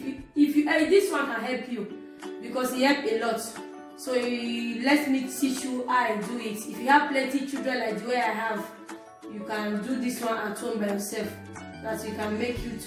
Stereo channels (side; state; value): both; identical; correlation 1.00